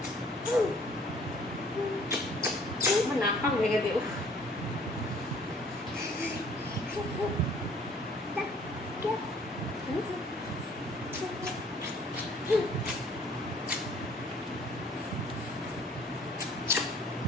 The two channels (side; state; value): both; normal; correlation 0.57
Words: নাক ভেঙে দেব।